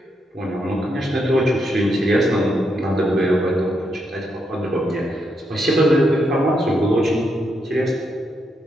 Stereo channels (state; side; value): normal; both; correlation 0.80